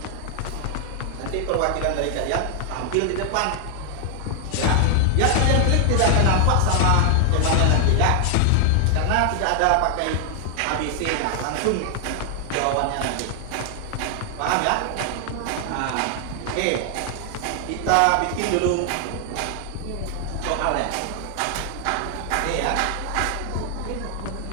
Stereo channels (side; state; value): both; different; correlation 0.00